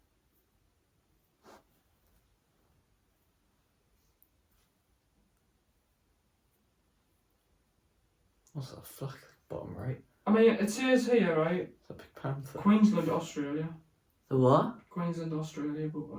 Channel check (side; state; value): both; identical; correlation 1.00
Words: What's that flag bottom right? I mean, it says here, right? It's a big panther. Queensland, Australia. The what? Queensland, Australia, but